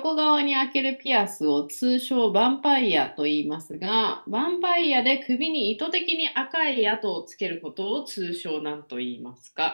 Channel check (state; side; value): inverted; both; correlation -1.00